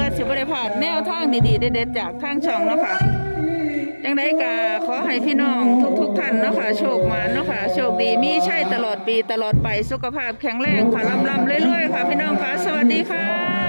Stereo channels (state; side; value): inverted; both; correlation -1.00